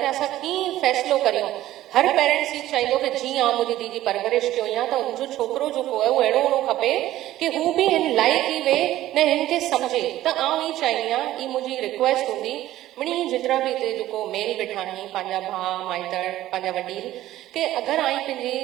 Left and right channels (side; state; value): left; quieter; 14.5 dB